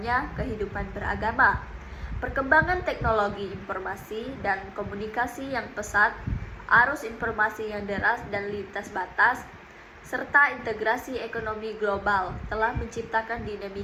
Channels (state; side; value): identical; both; correlation 1.00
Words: kehidupan beragama. Perkembangan teknologi informasi dan komunikasi yang pesat, arus informasi yang deras dan lintas batas, serta integrasi ekonomi global telah menciptakan